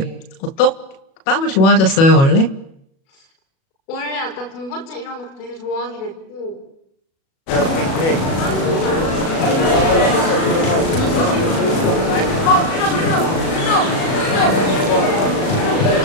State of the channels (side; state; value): right; late; 37 ms